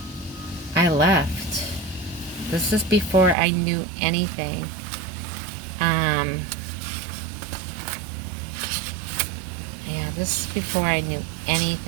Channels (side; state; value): left; drops out; at 3.4 s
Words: I left. This is before I knew anything. Yeah, this is before I knew